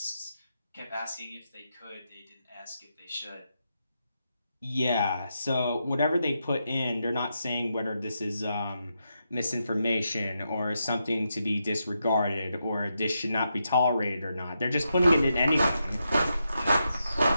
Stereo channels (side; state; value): both; inverted; correlation -0.84